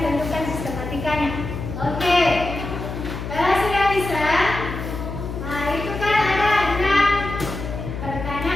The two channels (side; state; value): left; noise; hum, 7 dB below the sound